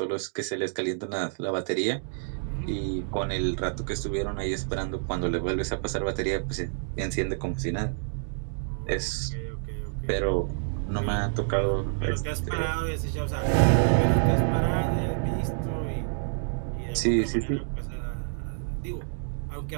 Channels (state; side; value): silent; left; digital silence